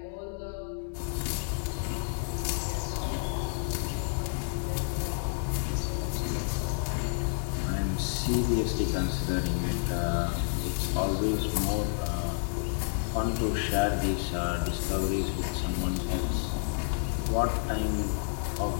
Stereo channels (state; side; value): silent; right; 58 dB below the other